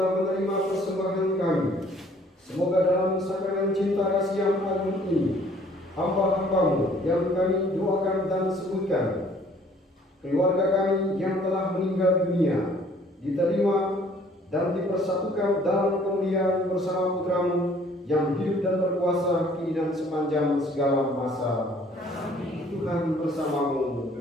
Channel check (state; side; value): normal; both; correlation 0.58